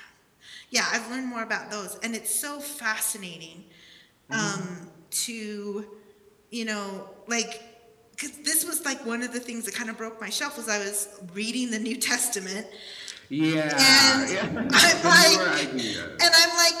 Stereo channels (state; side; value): identical; both; correlation 1.00